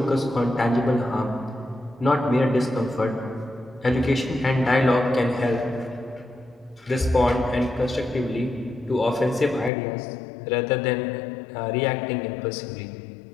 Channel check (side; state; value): right; drops out; at 9.7 s